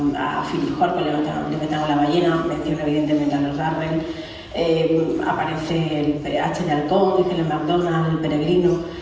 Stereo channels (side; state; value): both; identical; correlation 1.00